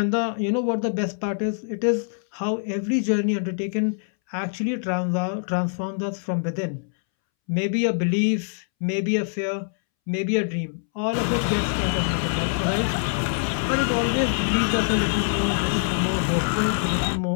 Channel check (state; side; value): silent; right; 62 dB below the other